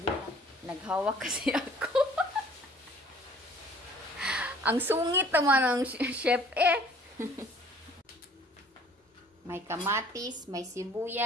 Naghawak kasi ako. Ang sungit naman ng chef eh. May kamatis, may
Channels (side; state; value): both; normal; correlation 0.54